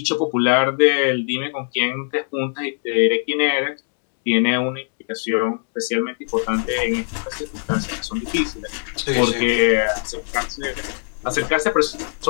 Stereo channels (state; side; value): silent; right; digital silence